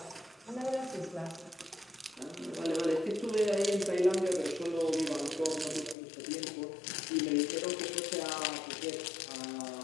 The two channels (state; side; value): drops out; right; at 6.0 s